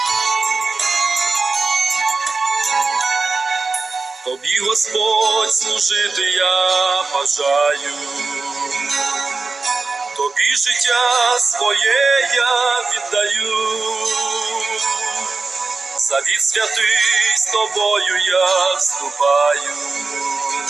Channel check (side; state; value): left; quieter; 4.0 dB